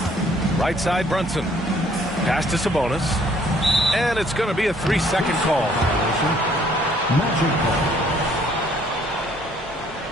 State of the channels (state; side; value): normal; both; correlation 0.62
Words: Right side Brunson. Pass to Sabonis. And it's going to be a 3-second call. Magic call.